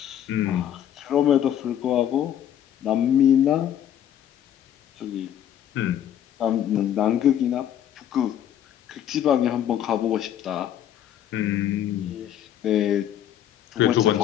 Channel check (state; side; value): quieter; right; 10.5 dB